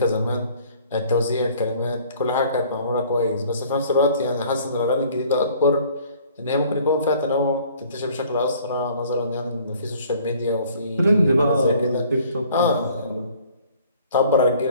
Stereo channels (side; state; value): both; inverted; correlation -0.55